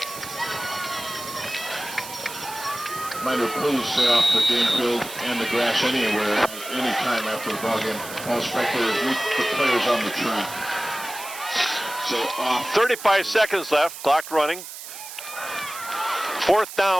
Reminder, please stay off the game field and the grass anywhere, anytime after the ball game. All spectators meet the players on the track. So off. 35 seconds left, clock running. 4th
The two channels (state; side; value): noise; right; hiss, 11 dB below the sound